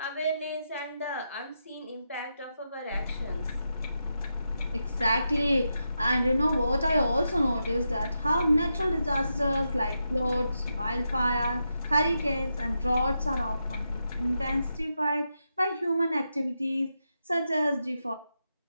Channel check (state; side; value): inverted; both; correlation -0.86